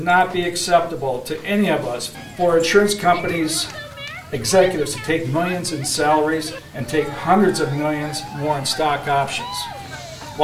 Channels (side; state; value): both; identical; correlation 1.00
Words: not be acceptable to any of us for insurance companies' executives to take millions in salaries and take hundreds of millions more in stock options